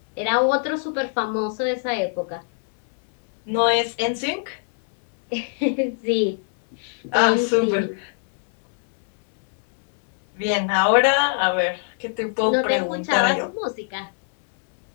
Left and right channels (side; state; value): right; silent; 64 dB below the other